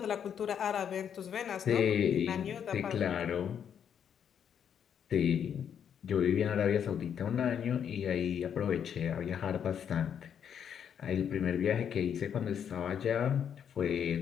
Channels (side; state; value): right; quieter; 8.3 dB